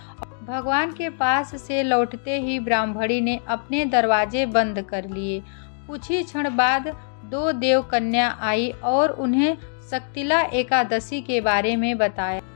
भगवान के पास से लौटते ही ब्राह्मणी ने अपने दरवाजे बंद कर लिए। कुछ ही क्षण बाद 2 देव कन्या आई और उन्हें शक्तिला एकादशी के बारे में बताया।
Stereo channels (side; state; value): right; silent; digital silence